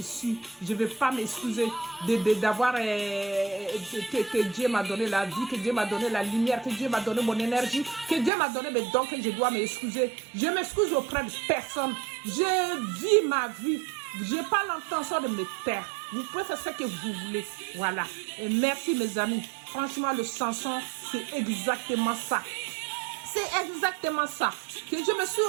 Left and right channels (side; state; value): left; drops out; at 8.3 s